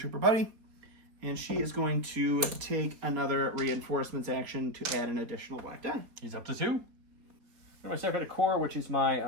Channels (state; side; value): late; left; 3.9 ms